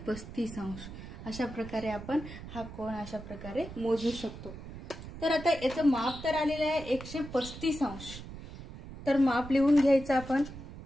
अंश. अशा प्रकारे आपण हा कोन अशा प्रकारे मोजू शकतो. तर आता याचं माप तर आलेलं आहे 135 अंश. तर माप लिहून घ्यायचं आपण.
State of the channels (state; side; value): noise; right; rumble, 12 dB below the sound